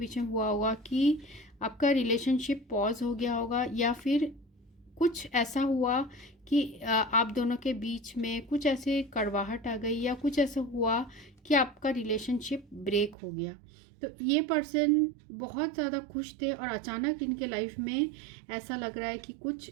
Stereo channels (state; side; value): drops out; left; at 13.2 s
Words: में हुआ होगा कि आपका रिलेशनशिप पॉज हो गया होगा, या फिर कुछ ऐसा हुआ कि आप दोनों के बीच में कुछ ऐसे कड़वाहट आ गई, या कुछ ऐसा हुआ कि आपका रिलेशनशिप ब्रेक हो गया। तो ये पर्सन बहुत ज़्यादा खुश थे और अचानक इनके लाइफ में ऐसा लग रहा है कि कुछ